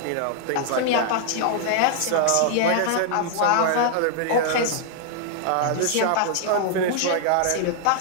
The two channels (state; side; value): different; both; correlation -0.01